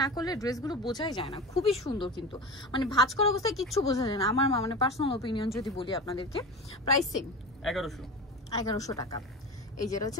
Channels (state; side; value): normal; both; correlation 0.29